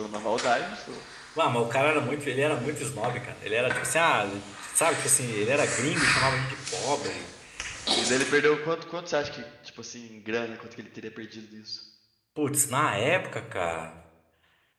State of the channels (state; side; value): identical; both; correlation 1.00